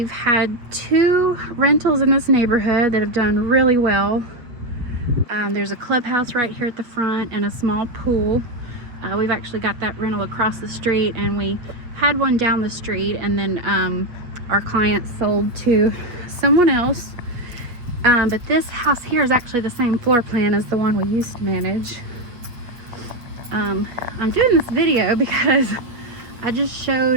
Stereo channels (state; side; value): late; left; 8.4 ms